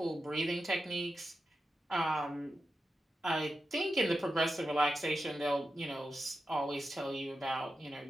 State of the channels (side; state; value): both; normal; correlation 0.90